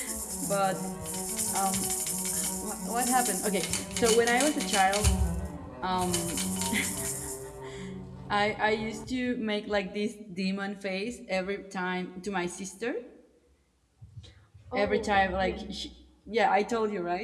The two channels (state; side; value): identical; both; correlation 1.00